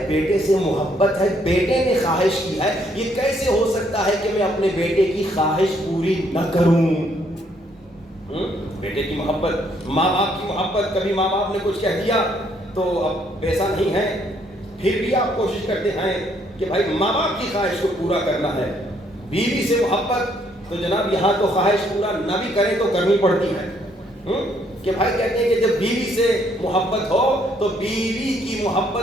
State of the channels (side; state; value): both; normal; correlation 0.69